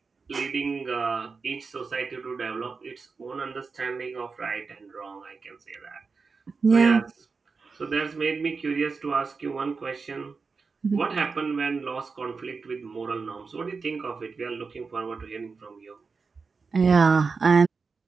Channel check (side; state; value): left; quieter; 4.7 dB